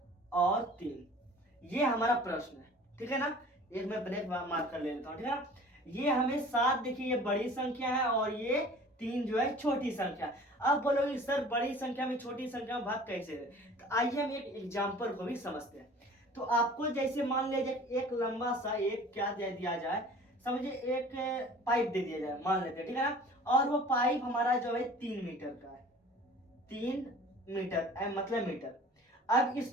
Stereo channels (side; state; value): both; normal; correlation 0.45